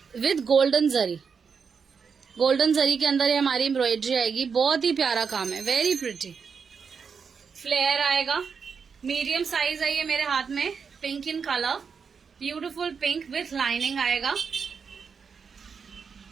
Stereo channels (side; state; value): left; quieter; 6.0 dB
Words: with golden zari. Golden zari के अंदर ये हमारी एम्ब्रॉयडरी आएगी, बहुत ही प्यारा काम है, वेरी प्रिटी। फ्लेयर आएगा, मीडियम साइज है ये मेरे हाथ में, pink in colour, beautiful pink with lining आएगा।